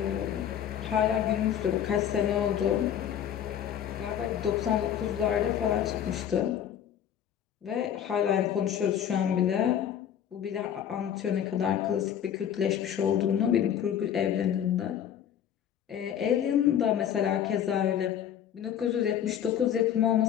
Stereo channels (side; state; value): right; quieter; 9.6 dB